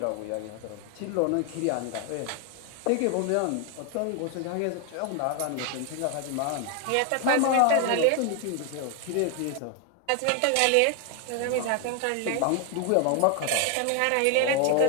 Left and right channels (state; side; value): different; both; correlation 0.01